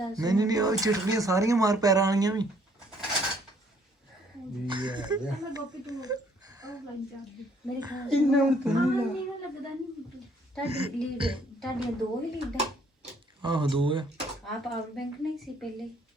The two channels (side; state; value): both; normal; correlation 0.64